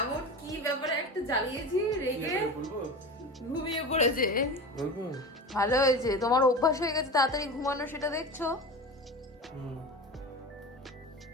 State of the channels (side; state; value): both; normal; correlation 0.29